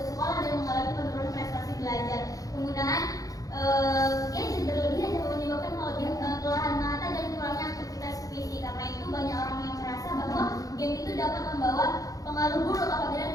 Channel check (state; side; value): late; right; 0.17 ms